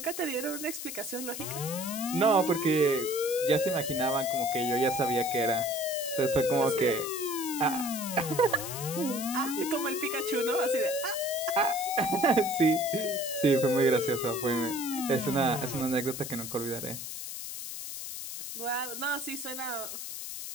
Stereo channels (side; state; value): left; noise; hiss, 7 dB below the sound